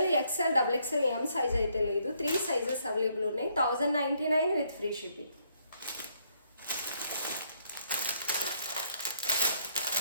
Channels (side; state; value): both; inverted; correlation -0.70